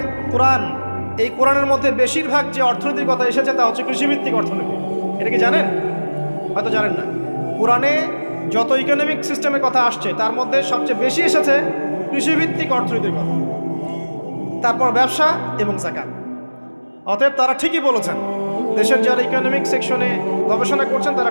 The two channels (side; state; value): both; inverted; correlation -1.00